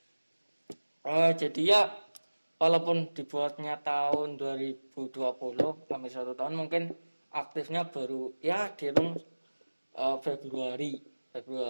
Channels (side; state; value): both; inverted; correlation -1.00